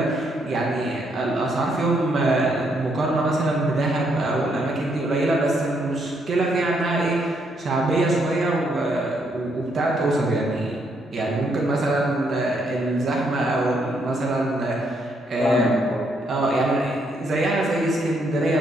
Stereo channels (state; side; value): normal; both; correlation 0.74